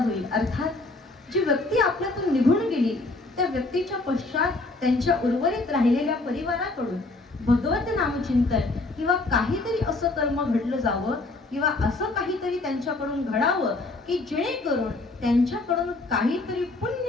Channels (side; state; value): right; quieter; 3.2 dB